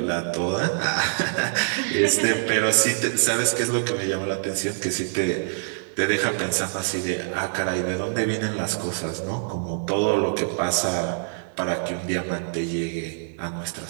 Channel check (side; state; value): left; silent; digital silence